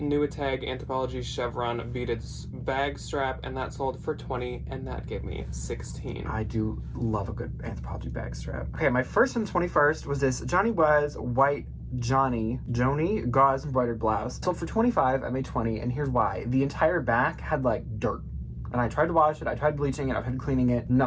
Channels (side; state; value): both; identical; correlation 1.00